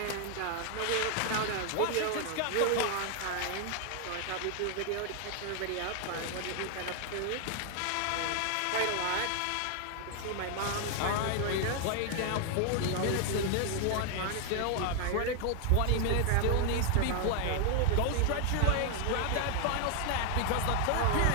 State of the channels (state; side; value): different; both; correlation 0.00